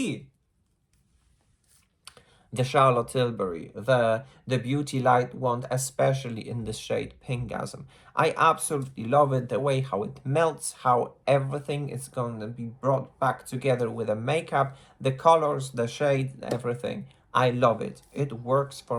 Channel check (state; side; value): identical; both; correlation 1.00